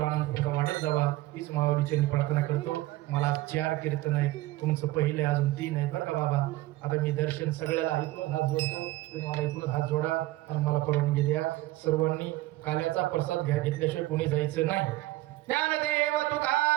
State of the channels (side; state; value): left; quieter; 17.7 dB